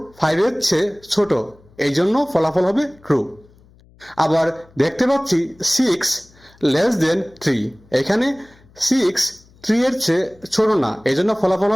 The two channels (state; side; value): noise; left; hum, 28 dB below the sound